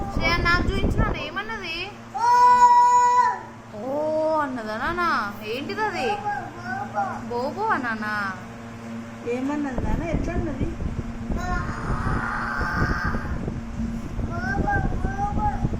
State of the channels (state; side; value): identical; both; correlation 1.00